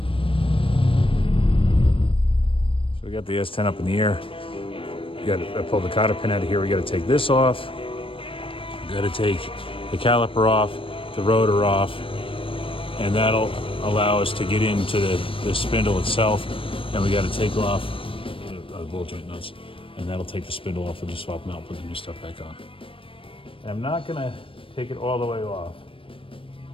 So we got the S-10 up in the air. I pulled the cotter pin out of here. We got to take this off. We got to take the caliper off, the rotor off, and that'll allow us to get into the spindle itself, and we got to take off the ball joint nuts, and that'll take the spindle off. We'll just swap them out, put the new stuff back on. And I'm not gonna take it all the way off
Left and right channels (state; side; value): late; right; 0.26 ms